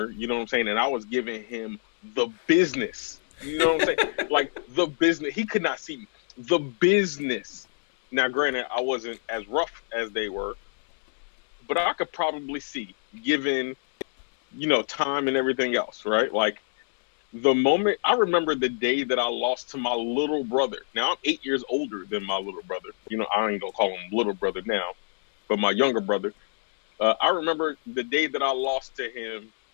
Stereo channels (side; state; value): right; silent; 61 dB below the other